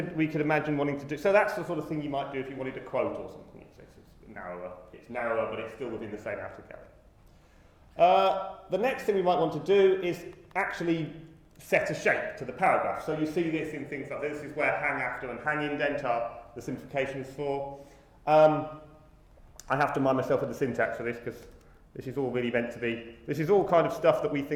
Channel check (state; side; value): identical; both; correlation 1.00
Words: imagine wanting to do, so that's the sort of thing you might do if you wanted a quote or something. It's narrower, but it's still within the same outer galley. The next thing we might want to do is actually set a shape to the paragraph. So you see this in things like this. This is where hang after and hang indent are the simplifications for. I have to mind myself with the syntax for this because this is all really meant to be. This is all kind of stuff that we